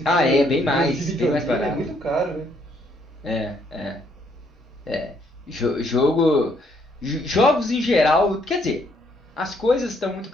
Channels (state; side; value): normal; both; correlation 0.69